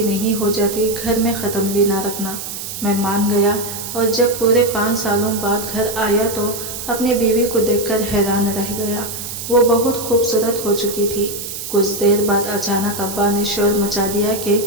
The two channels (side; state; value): right; noise; hiss, 8 dB below the sound